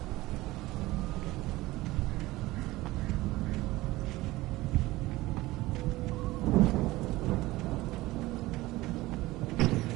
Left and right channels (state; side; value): quieter; left; 18.8 dB